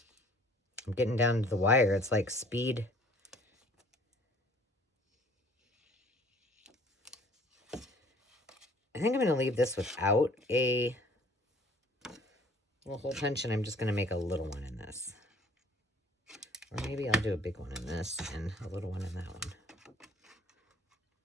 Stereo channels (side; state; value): both; normal; correlation 0.55